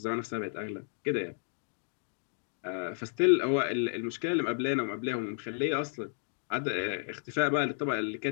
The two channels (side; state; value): right; silent; 56 dB below the other